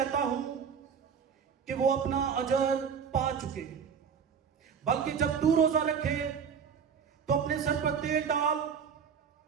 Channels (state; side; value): quieter; left; 6.9 dB